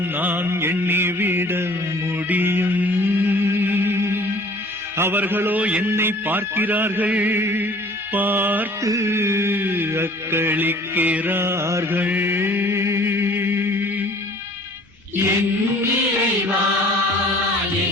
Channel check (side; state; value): both; normal; correlation 0.50